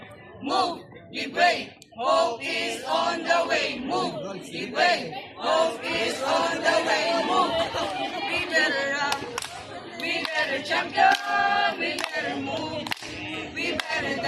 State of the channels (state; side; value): identical; both; correlation 1.00